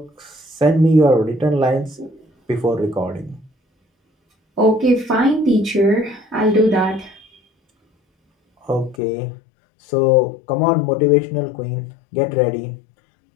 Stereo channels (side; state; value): right; drops out; at 9.0 s